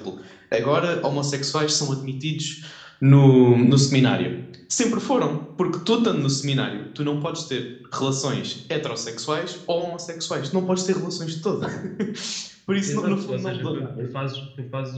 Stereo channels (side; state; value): both; identical; correlation 1.00